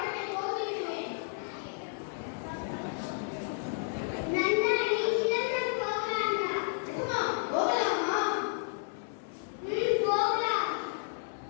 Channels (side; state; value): right; silent; 57 dB below the other